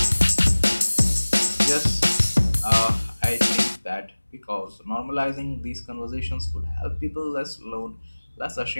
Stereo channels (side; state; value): both; inverted; correlation -1.00